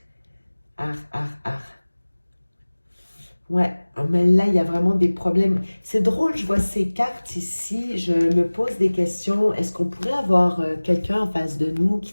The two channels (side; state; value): both; inverted; correlation -1.00